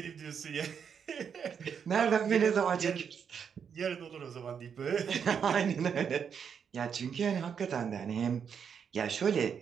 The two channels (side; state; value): left; quieter; 7.2 dB